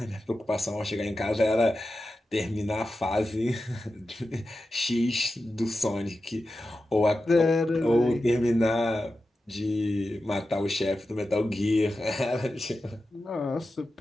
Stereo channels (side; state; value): both; normal; correlation 0.92